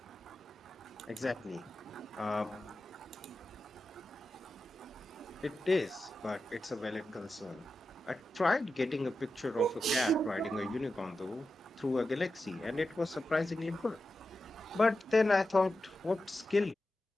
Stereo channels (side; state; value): both; normal; correlation 0.91